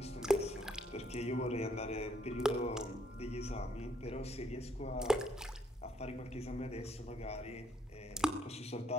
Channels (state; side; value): normal; both; correlation 0.69